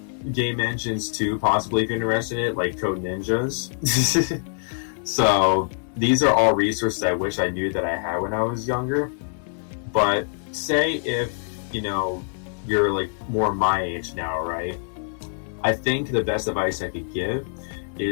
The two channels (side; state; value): right; silent; 62 dB below the other